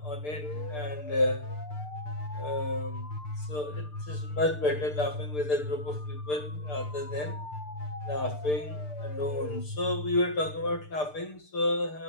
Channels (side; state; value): right; late; 6.7 ms